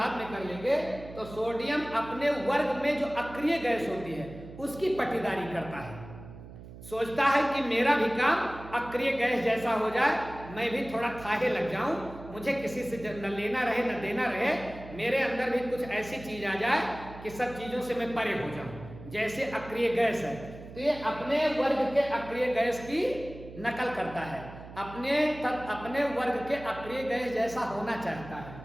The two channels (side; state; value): right; noise; hum, 15 dB below the sound